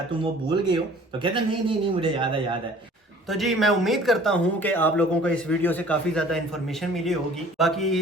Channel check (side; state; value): both; normal; correlation 0.50